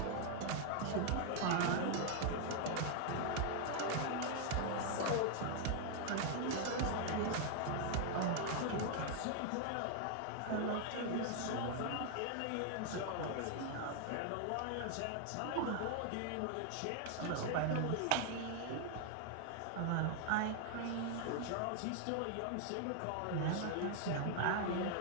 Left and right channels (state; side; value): different; both; correlation 0.00